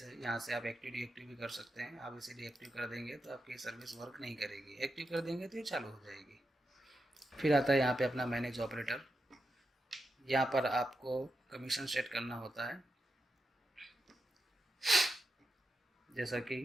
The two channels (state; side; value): normal; both; correlation 0.87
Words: है। यहाँ से आप एक्टिव डीएक्टिव भी कर सकते हैं। आप इसे डीएक्टिव कर देंगे तो आपकी सर्विस वर्क नहीं करेगी, एक्टिव कर देंगे तो ये चालू हो जाएगी। फिर आता है यहाँ पे अपना मैनेज ऑपरेटर। यहाँ पर आपको कमीशन सेट करना होता है, जैसा